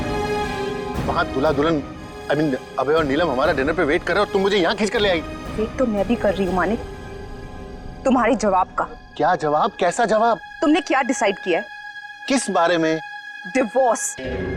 वहां दूल्हा दुल्हन अभय और नीलम हमारा डिनर पे वेट कर रहे हो और तुम मुझे यहाँ खींच कर ले आई। वेट तो मैं भी कर रही हूँ मानिक, तुम्हारे जवाब का। क्या जवाब? कैसा जवाब? तुमने क्या डिसाइड किया है? किस बारे में? डिवोर्स।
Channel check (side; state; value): both; identical; correlation 1.00